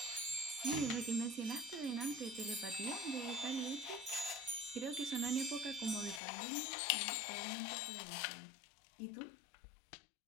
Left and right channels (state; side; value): drops out; right; at 6.2 s